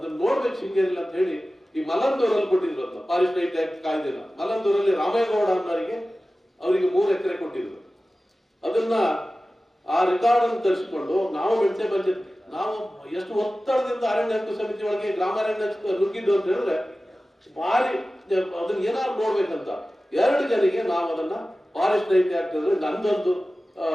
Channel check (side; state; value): both; normal; correlation 0.96